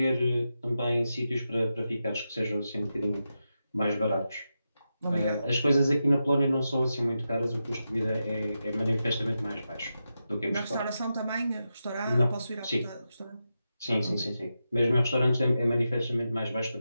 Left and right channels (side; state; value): both; inverted; correlation -0.89